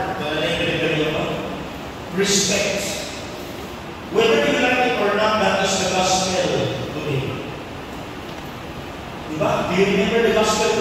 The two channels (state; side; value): identical; both; correlation 1.00